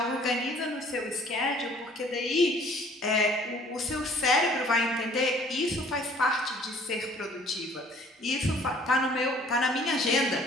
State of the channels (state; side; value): normal; both; correlation 0.55